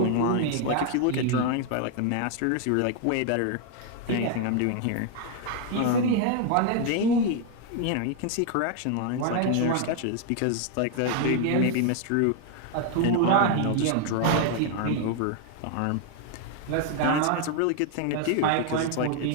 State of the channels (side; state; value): both; different; correlation 0.00